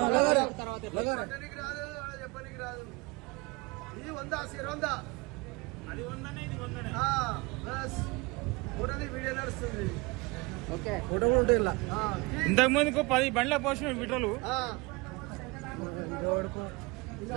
చెప్పడానికి రాదు, చెప్పడానికి రాదు. ఇది 100 అది 100 వీడియో నడుస్తుంది. ఫోటో కూడా ఉంటాయి ఇలా. ఇంతకు ముందుకు 10 బండ్ల పోసిన విటలు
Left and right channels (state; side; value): quieter; left; 25.5 dB